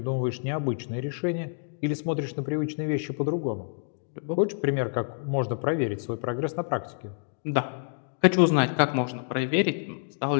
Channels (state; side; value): silent; right; 59 dB below the other